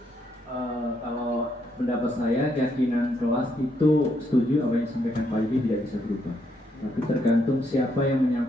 Kalau pendapat saya, keyakinan kelas itu setuju apa yang disampaikan Pak Yudi tidak bisa berubah. Tapi tergantung siapa yang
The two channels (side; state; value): both; normal; correlation 0.75